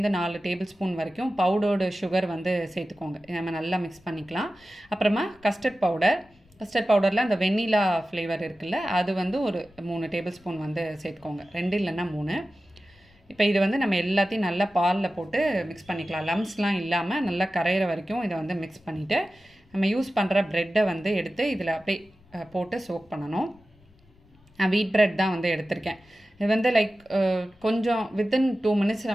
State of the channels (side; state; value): left; noise; rumble, 30 dB below the sound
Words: டேபிள் ஸ்பூன் வரைக்கும் பவுடர்டு சுகர் வந்து சேர்த்துக்கோங்க. நம்ம நல்லா மிக்ஸ் பண்ணிக்கலாம். அப்புறமா கஸ்டர்ட் பவுடரில் அந்த வெண்ணிலா ஃப்ளேவர் இருக்குல்ல, அது வந்து ஒரு 3 டேபிள் ஸ்பூன் வந்து சேர்த்துக்கோங்க, 2 இல்லைன்னா 3. இப்போ இது வந்து நம்ம எல்லாத்தையும் நல்லா பாலில் போட்டு மிக்ஸ் பண்ணிக்கலாம். லம்ஸ்லாம் இல்லாமல் நல்லா கரையிற வரைக்கும் இதை வந்து மிக்ஸ் பண்ணிவிட்டு நம்ம யூஸ் பண்ணுற ப்ரெட்டை வந்து எடுத்து இதில் அப்படியே போட்டு சோக் பண்ணணும். நான் வீட் ப்ரெட் தான் வந்து எடுத்திருக்கேன். இது வந்து லைக் கொஞ்சம் வித்தின் 2 minutes